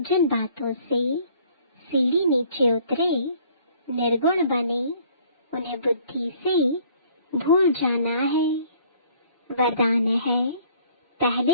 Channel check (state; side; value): inverted; both; correlation -0.58